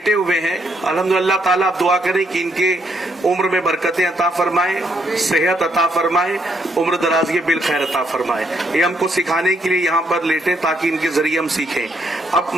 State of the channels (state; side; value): normal; both; correlation 0.73